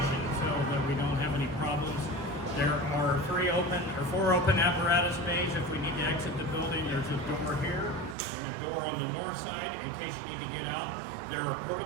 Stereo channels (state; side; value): drops out; left; at 8.2 s